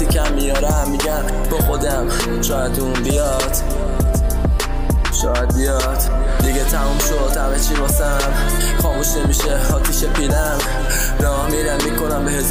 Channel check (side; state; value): both; identical; correlation 1.00